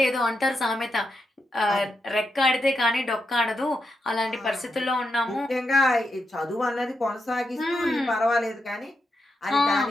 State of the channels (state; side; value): normal; both; correlation 0.84